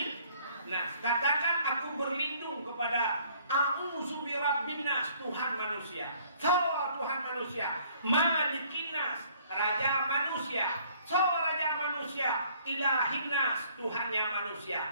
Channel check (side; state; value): both; inverted; correlation -0.60